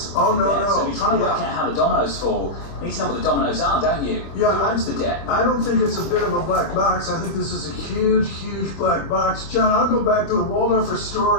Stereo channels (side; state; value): right; late; 26 ms